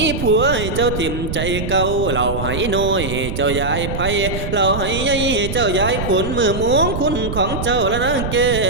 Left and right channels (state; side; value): noise; right; rumble, 5 dB below the sound